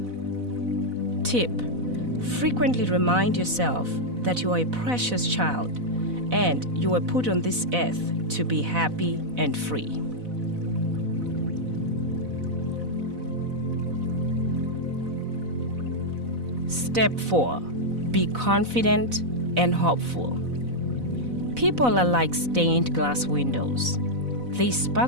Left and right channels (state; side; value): late; left; 4.0 ms